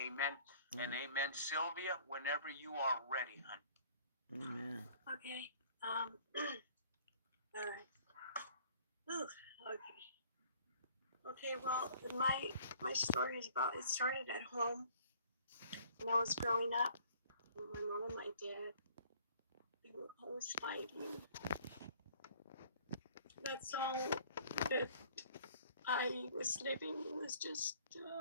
and amen. Sylvia, whenever you are ready, honey. Amen. Okay. All right. Ooh, okay. Okay, well, my story is about, it started at home when I was growing up. And my mom and my dad, they were always fighting. That's all that I was living, was just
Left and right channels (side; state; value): both; inverted; correlation -0.55